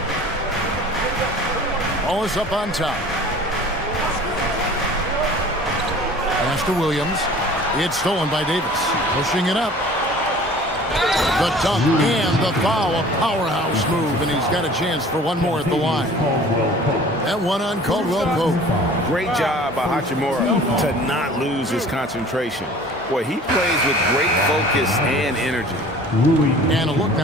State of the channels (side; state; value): both; normal; correlation 0.46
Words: Wallace up on top. Pass to Williams. It's stolen by Davis. Pushing it up. The dunk and the foul, a powerhouse move, and he's got a chance for one more at the line. That one on Caldwell Pope. Great job by Hachimura to not lose his concentration. Boy, he plays with great focus and energy. And a look